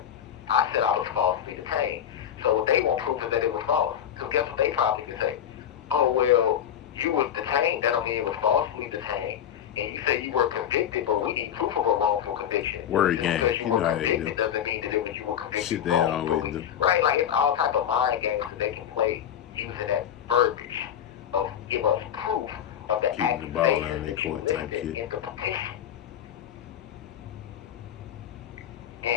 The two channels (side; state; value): right; quieter; 9.7 dB